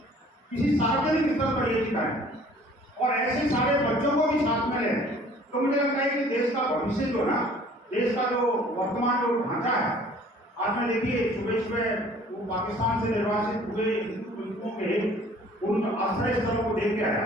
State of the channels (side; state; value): both; normal; correlation 0.53